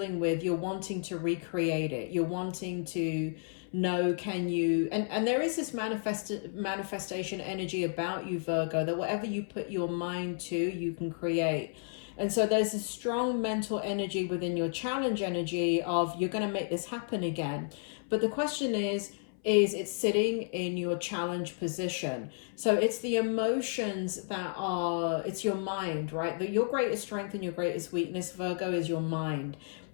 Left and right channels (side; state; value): right; silent; 56 dB below the other